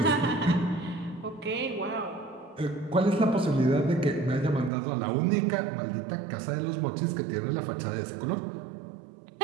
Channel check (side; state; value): left; drops out; at 4.7 s